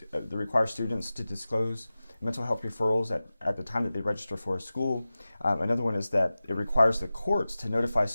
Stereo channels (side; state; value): both; inverted; correlation -0.96